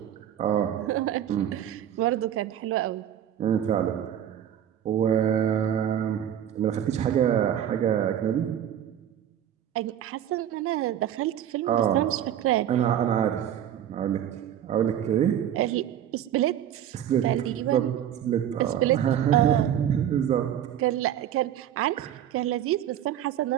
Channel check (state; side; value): quieter; left; 10.5 dB